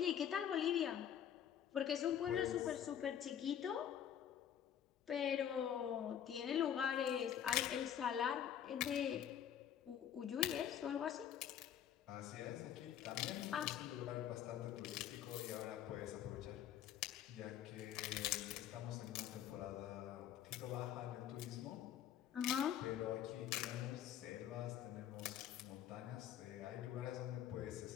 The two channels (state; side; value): quieter; right; 9.8 dB